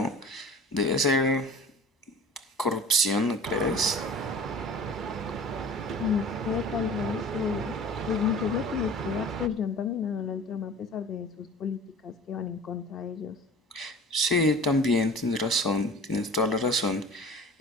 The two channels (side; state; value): both; normal; correlation 0.41